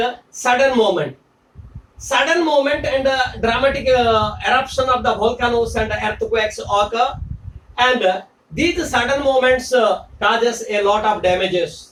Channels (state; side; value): identical; both; correlation 1.00